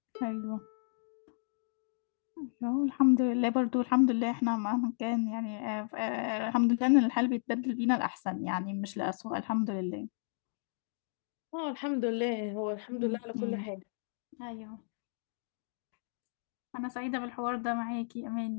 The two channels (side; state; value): right; silent; digital silence